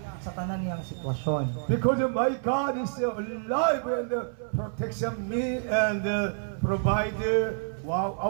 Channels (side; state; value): left; silent; 59 dB below the other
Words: sa tanan niyang sitwasyon. Because my God is alive and protection me and provide